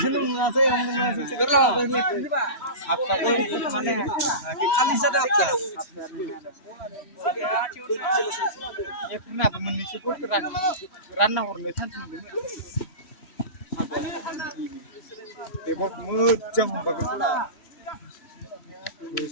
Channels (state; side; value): late; right; 3.1 ms